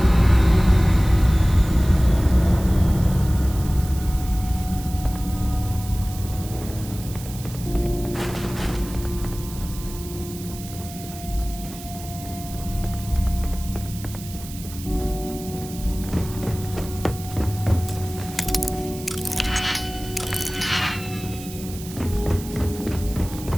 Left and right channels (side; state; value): right; noise; hiss, 15 dB below the sound